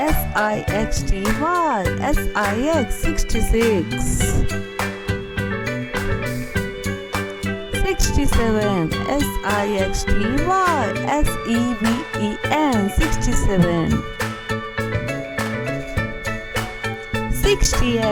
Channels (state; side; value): identical; both; correlation 1.00